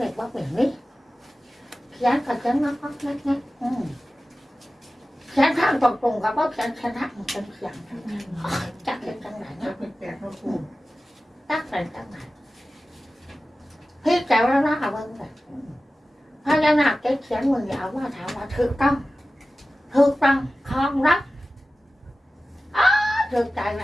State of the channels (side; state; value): both; normal; correlation 0.96